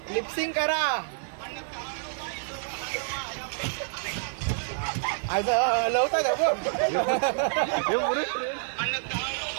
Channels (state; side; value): silent; left; digital silence